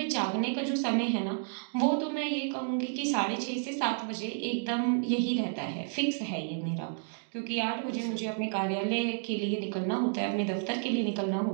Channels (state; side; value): silent; left; 57 dB below the other